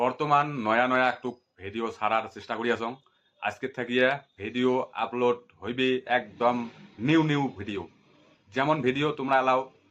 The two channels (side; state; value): both; identical; correlation 1.00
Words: নয়া নয়া একটু ভিডিও ছাড়ার চেষ্টা করি আছো। আজকে থাকিয়া ভিডিও আপলোড হইবে একদম নিউ নিউ ভিডিও, যেমন ভিডিও তোমরা এলাও